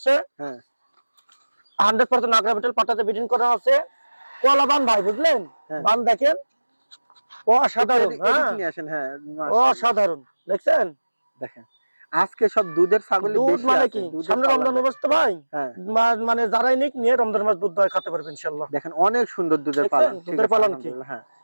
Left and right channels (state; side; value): inverted; both; correlation -1.00